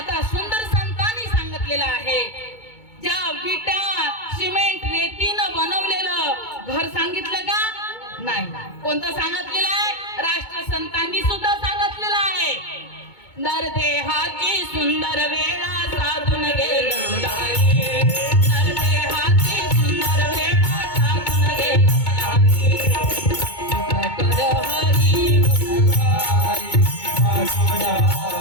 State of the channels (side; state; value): right; late; 2.2 ms